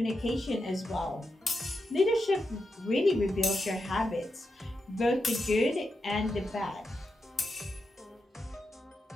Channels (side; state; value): both; normal; correlation 0.87